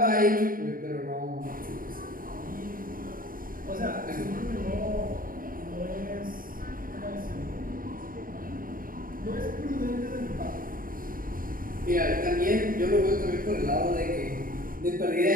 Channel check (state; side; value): late; left; 0.41 ms